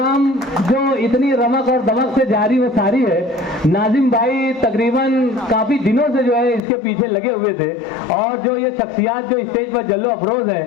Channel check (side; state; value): right; drops out; at 6.6 s